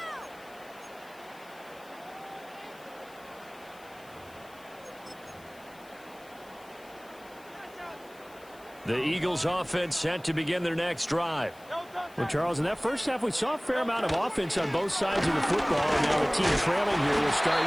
The Eagles offense set to begin their next drive. Well, Charles, in that first half, we saw a fair amount of offense on both sides of the football, and now the team trailing here will start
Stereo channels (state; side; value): noise; left; hiss, 25 dB below the sound